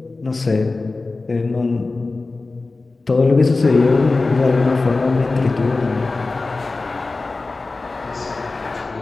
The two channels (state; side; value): quieter; right; 3.5 dB